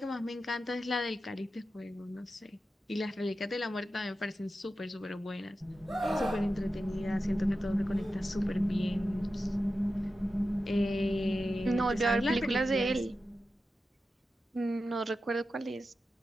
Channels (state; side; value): normal; both; correlation 0.92